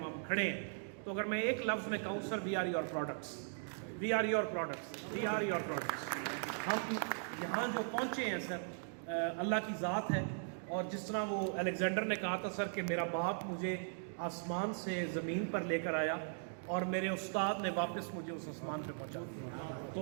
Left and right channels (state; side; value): silent; left; digital silence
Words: کھڑے ہیں, تو اگر میں ایک لفظ میں کہوں sir, we are your products, we are your products, we are your products. ہم یہاں جو پہنچے ہیں سر اللہ کی ذات ہے. اور جس طرح وہ الیگزینڈر نے کہا تھا سر کہ میرا باپ مجھے آسمان سے زمین پر لے کر آیا اور میرے استاد نے واپس مجھے اس آسمان پہ پہنچا دیا.